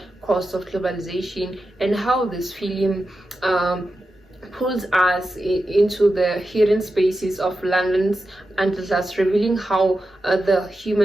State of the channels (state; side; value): normal; both; correlation 0.90